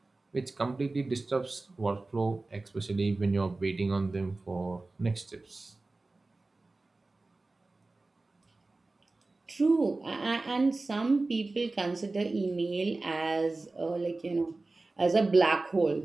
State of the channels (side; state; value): left; quieter; 3.3 dB